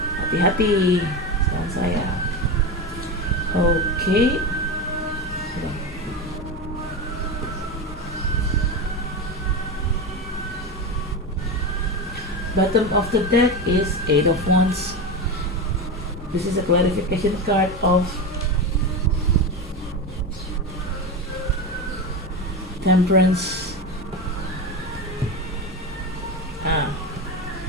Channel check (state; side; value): normal; both; correlation 0.20